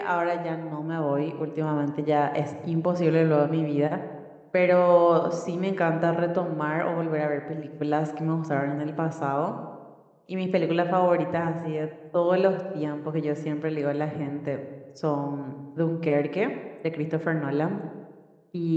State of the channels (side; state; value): both; identical; correlation 1.00